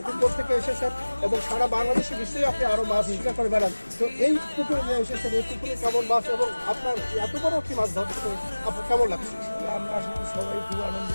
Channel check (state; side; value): inverted; both; correlation -1.00